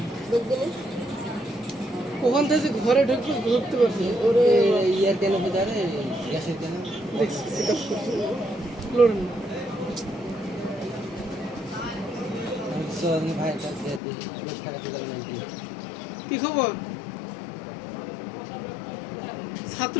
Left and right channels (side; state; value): right; drops out; at 14.0 s